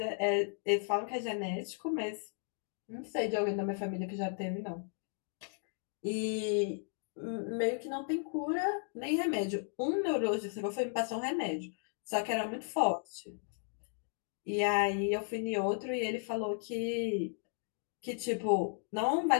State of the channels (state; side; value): silent; right; 54 dB below the other